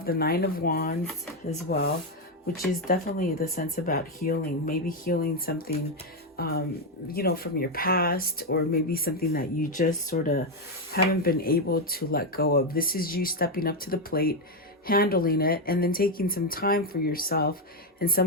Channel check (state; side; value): normal; both; correlation 0.05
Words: the Nine of Wands as well, which is definitely the sense about healing. Maybe healing something, you know, from your past, or maybe something that you just sort of haven't been able to let go of. This is you stepping up to the plate, handling it, and then taking some time for yourself and